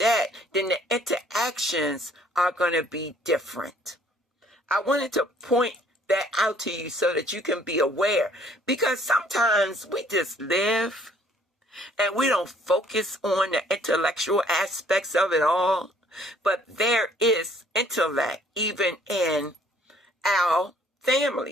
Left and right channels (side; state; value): both; normal; correlation 0.60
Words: then the interactions are going to be different. I wanted to point that out to you so that you can be aware, because sometimes we just live and we don't focus on the intellectual aspects of it all, but there is intellect even in our